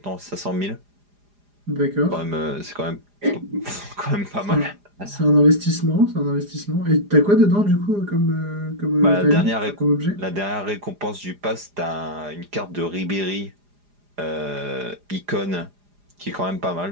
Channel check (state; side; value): late; left; 4.9 ms